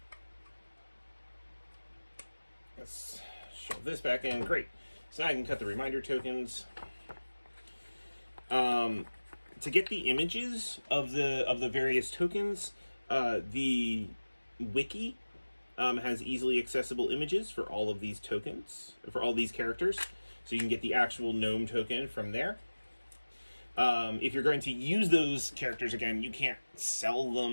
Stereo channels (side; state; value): both; inverted; correlation -1.00